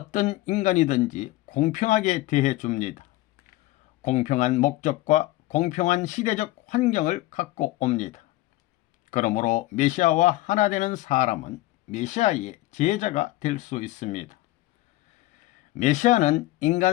인간이든지 공평하게 대해 줍니다. 공평한 목적과 공평한 시대적 환경을 갖고 옵니다. 그러므로 메시아와 하나 되는 사람은 메시아의 제자가 될 수 있습니다. 메시아는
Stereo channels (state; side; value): quieter; right; 17.9 dB